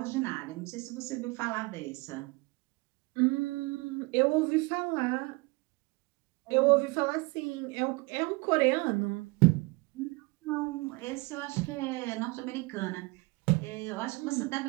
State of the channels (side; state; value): left; quieter; 25.4 dB